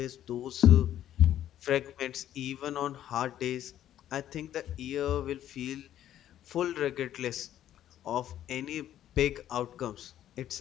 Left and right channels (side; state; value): right; quieter; 11.7 dB